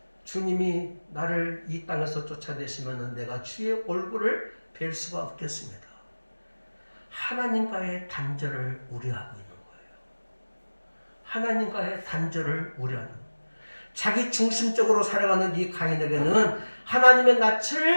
주님이 나를 이 땅에서 쫓아내시면 내가 주의 얼굴을 뵐 수가 없겠습니다. 하나님과의 단절을 우려하고 있는 거예요. 하나님과의 단절을 우려하는 거예요. 자기 중심적으로 살아가는 이 가인에게는 하나님의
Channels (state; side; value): inverted; both; correlation -1.00